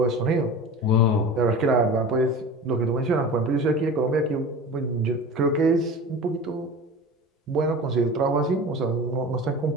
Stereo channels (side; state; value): both; normal; correlation 0.34